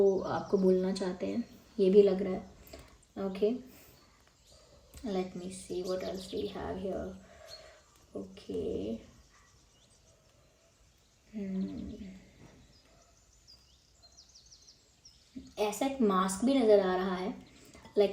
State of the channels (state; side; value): identical; both; correlation 1.00